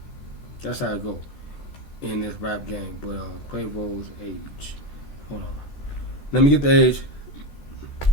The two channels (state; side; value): late; right; 13 ms